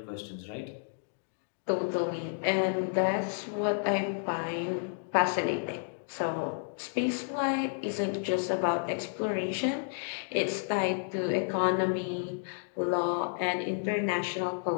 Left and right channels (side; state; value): right; silent; digital silence